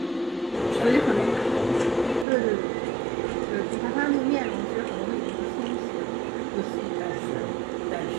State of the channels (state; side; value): drops out; left; at 2.2 s